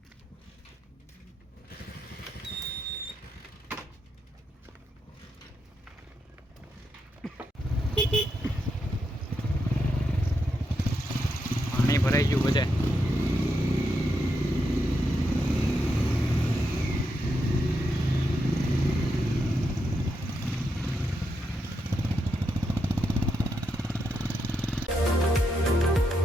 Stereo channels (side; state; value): both; normal; correlation 0.83